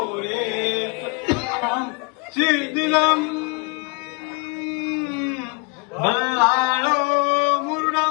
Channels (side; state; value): right; quieter; 32.7 dB